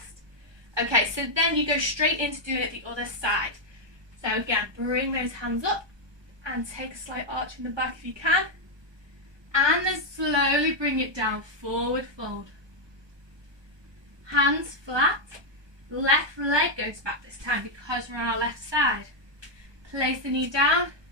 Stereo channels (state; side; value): late; left; 1.2 ms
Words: Okay, so then you go straight into doing it the other side. So again, bring those hands up and take a slight arch in the back if you can, and then slowly bring it down, forward fold. Hands flat, left leg goes back this time because we're on our left side. Place the knee down,